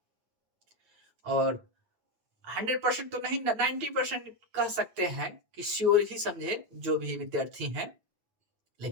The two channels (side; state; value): left; late; 9.0 ms